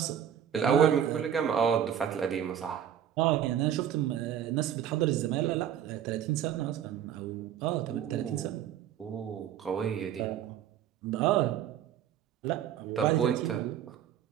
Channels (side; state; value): left; quieter; 9.6 dB